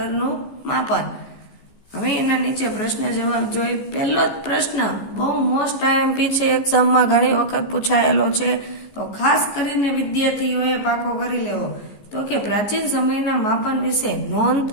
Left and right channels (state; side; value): late; right; 14 ms